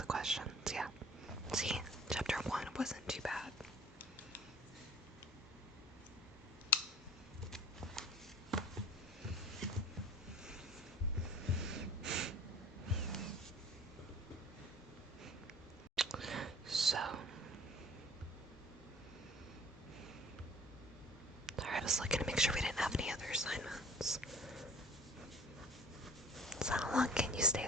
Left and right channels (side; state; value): both; normal; correlation 0.47